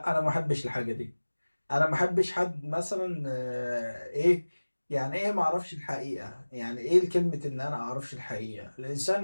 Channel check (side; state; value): both; inverted; correlation -1.00